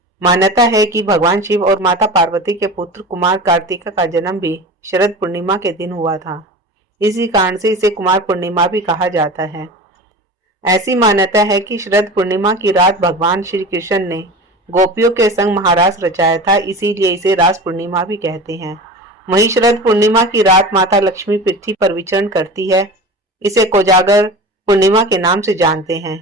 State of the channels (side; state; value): both; normal; correlation 0.33